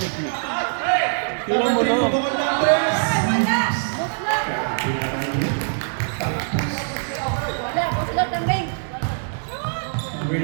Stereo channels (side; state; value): left; silent; digital silence